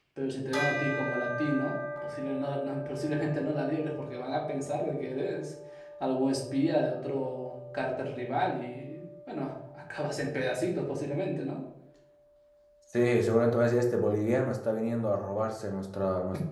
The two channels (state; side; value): identical; both; correlation 1.00